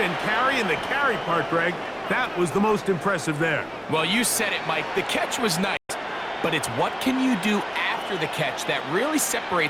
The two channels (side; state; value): both; identical; correlation 1.00